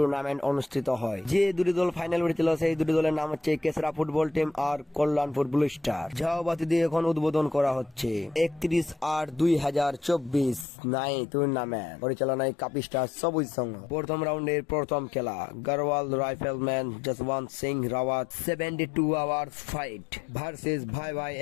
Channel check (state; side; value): drops out; right; at 10.7 s